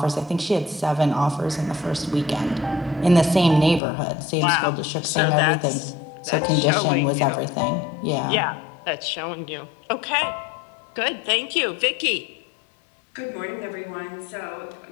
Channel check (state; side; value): drops out; right; at 3.8 s